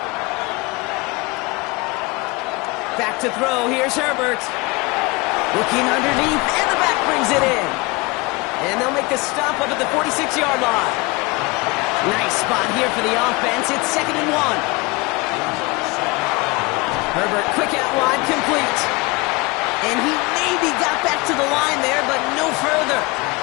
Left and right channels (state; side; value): quieter; right; 25.5 dB